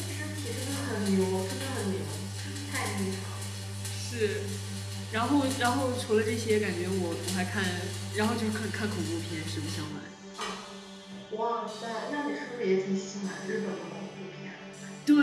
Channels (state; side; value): identical; both; correlation 1.00